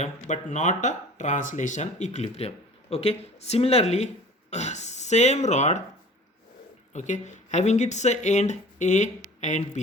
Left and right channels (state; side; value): normal; both; correlation 0.45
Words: but not a translation equilibrium. Okay, similarly same rod, okay, having its end A and